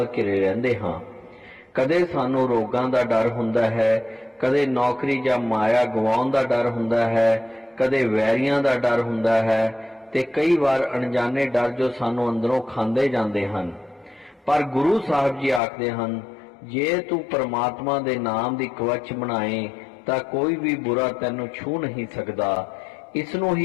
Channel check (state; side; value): drops out; right; at 15.6 s